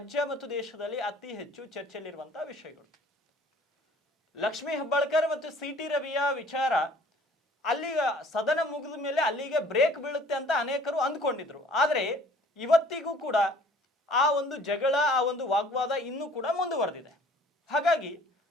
ಮತ್ತು ದೇಶದಲ್ಲಿ ಅತಿ ಹೆಚ್ಚು ಚರ್ಚೆಯಲ್ಲಿರುವಂತಹ ವಿಷಯಗಳು. ಲಕ್ಷ್ಮೀ ಹೆಬ್ಬಾಳ್ಕರ್ ಮತ್ತು ಸಿ.ಟಿ. ರವಿಯ ವಿಚಾರ ಅಲ್ಲಿಗೆ ಸದನ ಮುಗಿದ ಮೇಲೆ ಅಲ್ಲಿಗೆ ಬ್ರೇಕ್ ಬೀಳುತ್ತೆ ಅಂತ ಅನೇಕರು ಅಂದ್ಕೊಂಡಿದ್ರು. ಆದರೆ ಇವತ್ತಿಗೂ ಕೂಡ ಆ ಒಂದು ಜಗಳ, ಆ ಒಂದು ವಾಗ್ವಾದ ಇನ್ನೂ ಕೂಡ ಮುಂದುವರೆದಿದೆ. ಹಾಗಾಗಿ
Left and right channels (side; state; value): both; normal; correlation 0.53